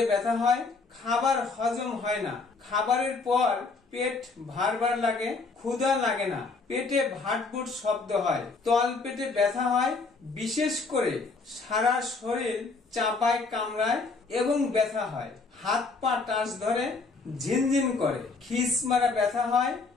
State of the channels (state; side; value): quieter; right; 4.1 dB